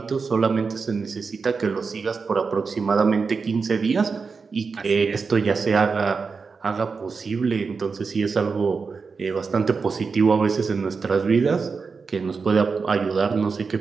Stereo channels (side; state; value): left; quieter; 4.9 dB